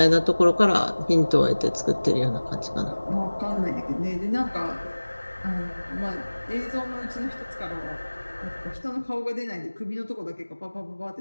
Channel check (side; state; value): both; inverted; correlation -1.00